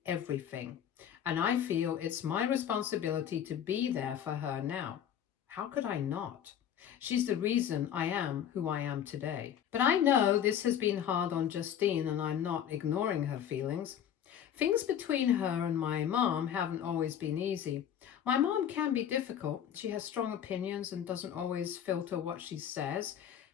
everything. And I feel it's my responsibility to be there for her now. How could I not? She's the reason I am who I am today. But I know this has been hard on Justine and I'm not ignoring her feelings. Things between her and my mom haven't always been easy. My mom can be difficult. She has strong opinions and doesn't always filter what she says.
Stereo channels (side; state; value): right; quieter; 9.5 dB